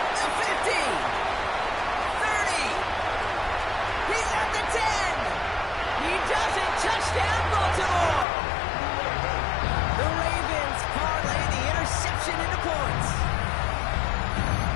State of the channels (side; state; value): right; drops out; at 8.2 s